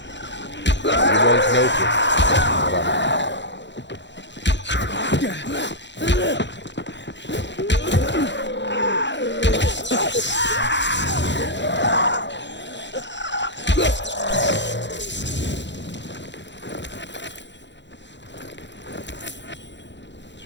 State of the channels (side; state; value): right; late; 0.52 ms